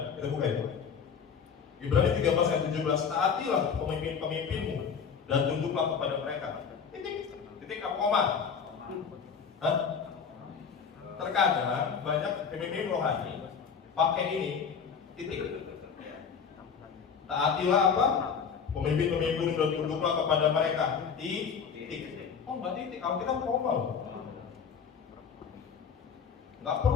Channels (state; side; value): quieter; right; 6.5 dB